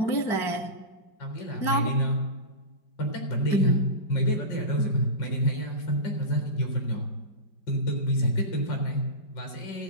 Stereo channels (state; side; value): late; right; 5.1 ms